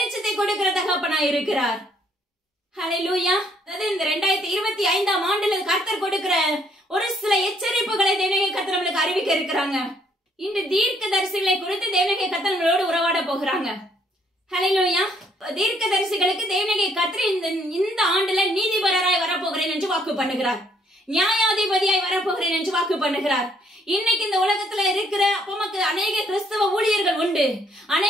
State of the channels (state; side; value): normal; both; correlation 0.67